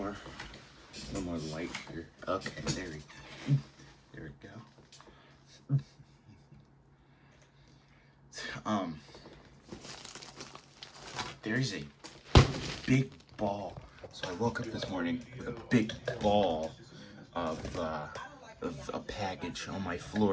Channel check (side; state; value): both; identical; correlation 1.00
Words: light here. Okay, there we go. There's a big ball. So I woke up this morning with a big ball of a package on my